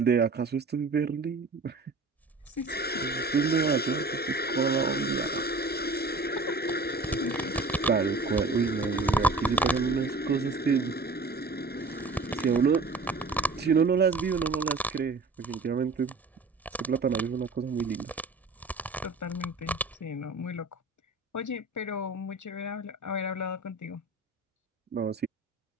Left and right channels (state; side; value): quieter; left; 3.5 dB